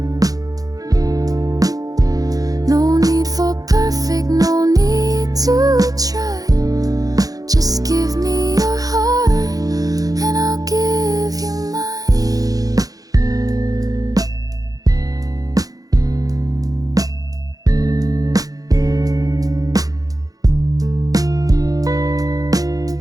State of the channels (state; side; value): late; left; 0.17 ms